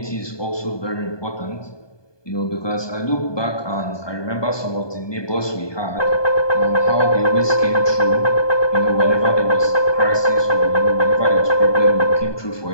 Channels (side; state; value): right; late; 1.2 ms